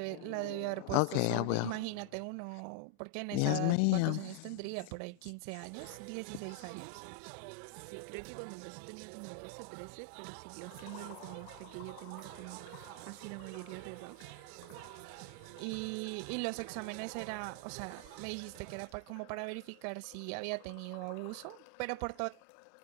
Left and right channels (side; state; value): both; different; correlation 0.00